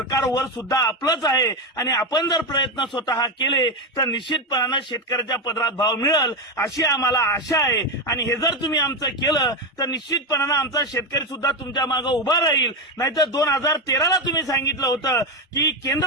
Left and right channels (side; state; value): both; normal; correlation 0.11